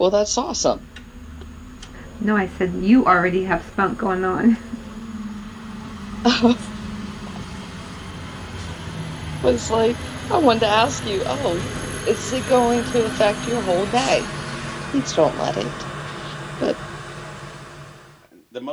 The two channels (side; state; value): both; identical; correlation 1.00